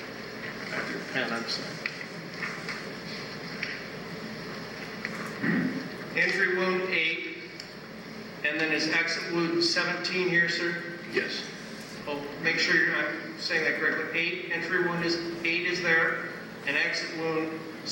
your pen, I'm sorry. Entry wound 8, and then is exit wound 17 here, sir? Yes. Oh, make sure I'm saying that correctly. 8, entry wound is 8 is there, and exit wound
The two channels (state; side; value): identical; both; correlation 1.00